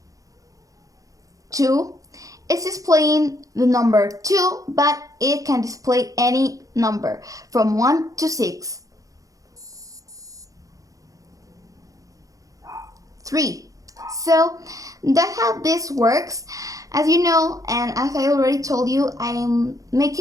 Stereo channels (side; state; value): left; late; 0.17 ms